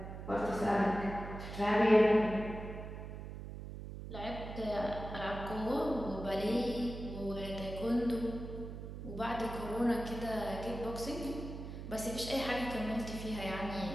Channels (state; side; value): noise; right; hum, 9 dB below the sound